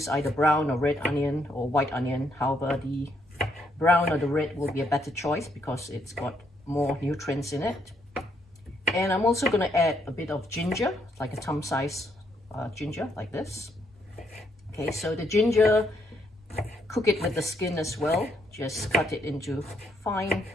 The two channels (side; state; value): both; normal; correlation 0.73